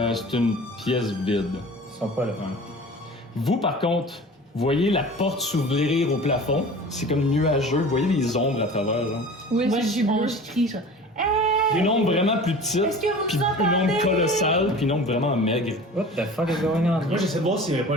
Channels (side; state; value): both; normal; correlation 0.40